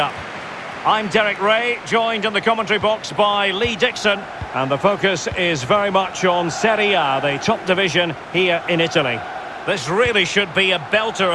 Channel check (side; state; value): both; identical; correlation 1.00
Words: I'm Derek Ray, joined in the commentary box by Lee Dixon, and the focus is very much on Serie A, the top division here in Italy. This really should be a belter